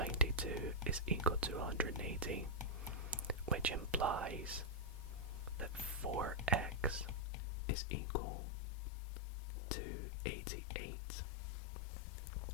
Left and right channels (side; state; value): right; drops out; at 7.2 s